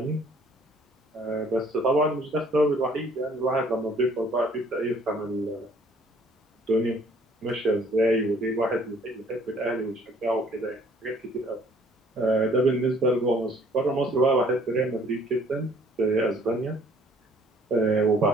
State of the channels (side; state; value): both; normal; correlation 0.58